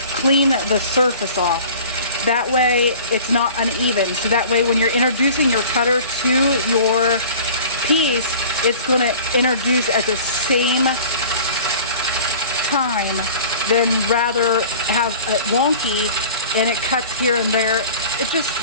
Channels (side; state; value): both; inverted; correlation -0.43